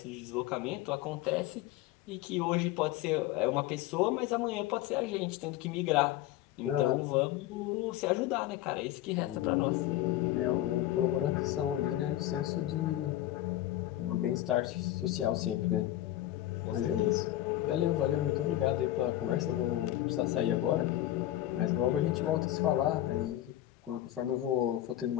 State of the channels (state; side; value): quieter; right; 14.2 dB